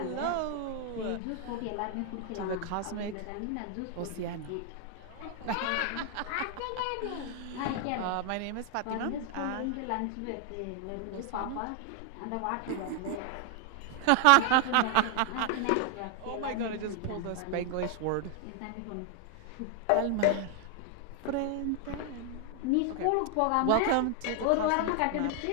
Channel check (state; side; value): different; both; correlation 0.00